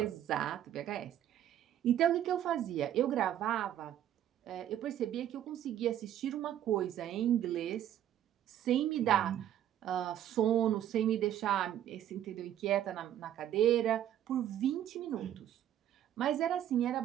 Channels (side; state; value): left; quieter; 11.1 dB